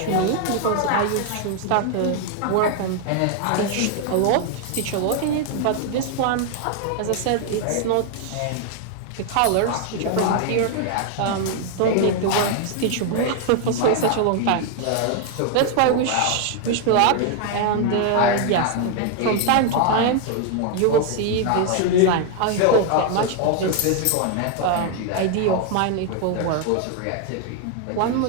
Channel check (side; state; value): both; different; correlation 0.00